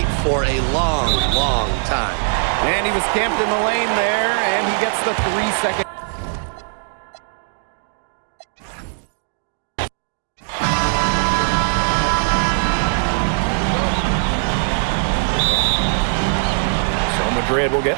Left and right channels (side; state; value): left; silent; digital silence